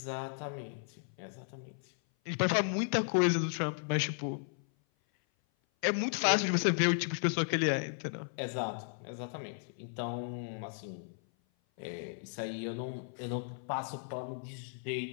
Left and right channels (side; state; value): right; silent; 54 dB below the other